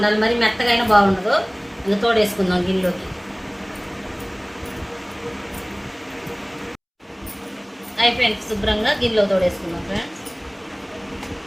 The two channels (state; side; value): identical; both; correlation 1.00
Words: మరి మెత్తగా అయినా బాగుండదు. ఇంకా తోడేసుకుందాం గిన్నెలోకి. అయిపోయింది, శుభ్రంగా గిన్నెలో తోడేసుకుందాం ఫ్రెండ్స్.